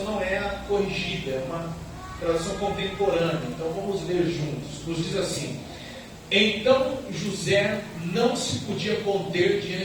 não é a corrigida, é uma tradução contemporânea. Então vamos ler juntos. Nos diz assim: Então José não se podia conter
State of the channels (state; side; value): identical; both; correlation 1.00